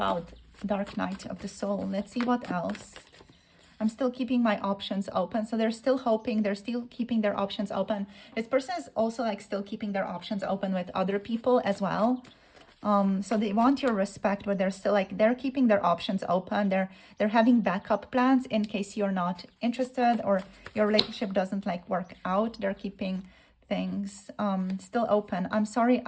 dark night of the soul. Let's see what else. I'm still keeping my options open. So they're still hoping, they're still keeping their options open. This person is also like still keeping their options open with other people as well. So they want your respect, but they're still like, they're keeping their options open. They're having backup plans in case you're not interested or your relationship doesn't like work out. They're keeping things still open. I'm sorry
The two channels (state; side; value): identical; both; correlation 1.00